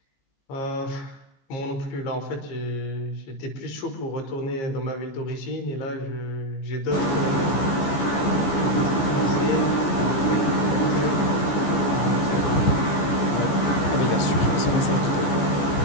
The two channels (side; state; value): right; late; 14 ms